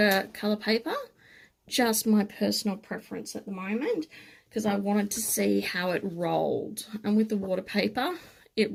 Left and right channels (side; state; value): both; identical; correlation 1.00